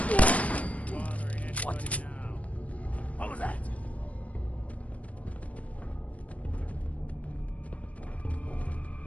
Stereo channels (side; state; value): right; late; 0.067 ms